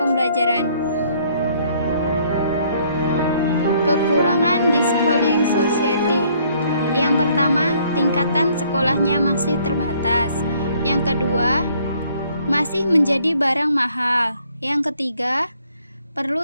Kekurangan di schooling society. Yang pertama, tingkatan sekolahnya masih terbatas. Yang kedua, masih menjadi barang mahal. Yang ketiga,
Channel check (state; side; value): inverted; both; correlation -0.64